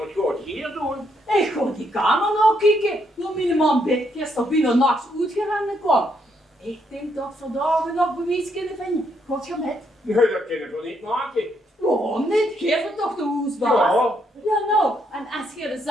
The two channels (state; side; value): normal; both; correlation 0.75